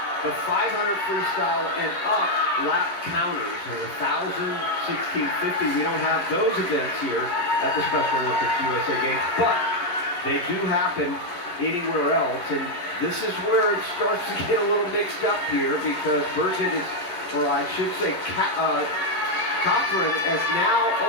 the 500 freestyle and up lap counters. And 1,000, 1650, we don't have those events here at the Special Olympics USA Games, but they do happen anywhere else. And this is where it starts to get a little mixed up here, because Burgett is, or I should say Cothran has now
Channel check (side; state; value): right; late; 11 ms